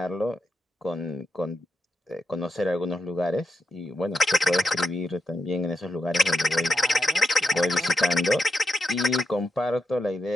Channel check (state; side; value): normal; both; correlation 0.85